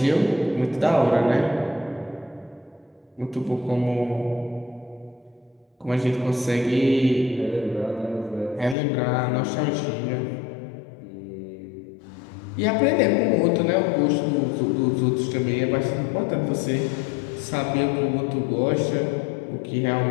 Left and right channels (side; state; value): right; drops out; at 8.8 s